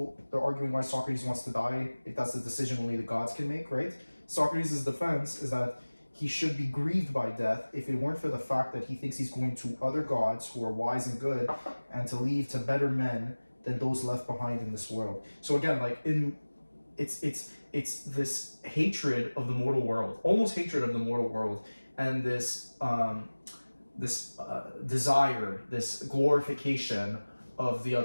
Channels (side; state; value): both; inverted; correlation -1.00